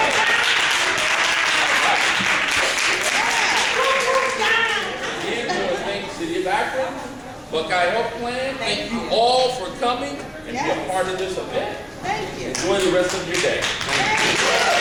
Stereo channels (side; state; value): both; identical; correlation 1.00